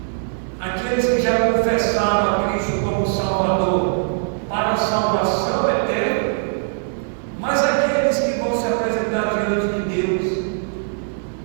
Aqueles que já confessaram a Cristo como Salvador para a salvação eterna, mas aqueles que vão se apresentar diante de Deus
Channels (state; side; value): silent; left; digital silence